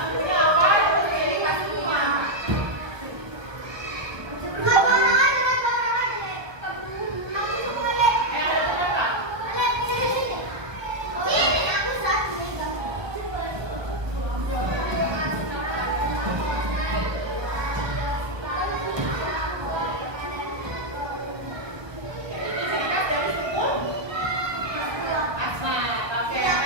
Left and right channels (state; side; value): late; left; 1.2 ms